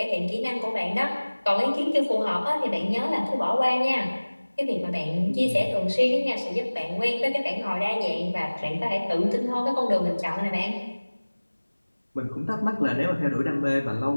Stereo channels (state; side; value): inverted; both; correlation -1.00